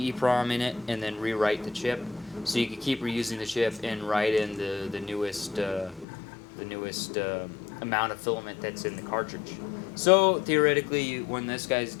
in it and then rewrite the chip. So you could keep reusing the chip and write in the newest amount of filament that's in the cartridge. So theoretically, when this guy's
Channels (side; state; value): right; drops out; at 6.1 s